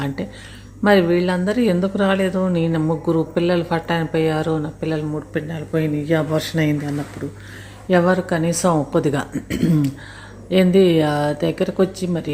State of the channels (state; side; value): identical; both; correlation 1.00